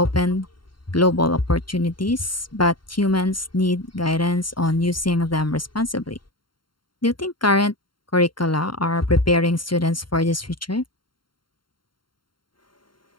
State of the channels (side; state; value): right; late; 0.72 ms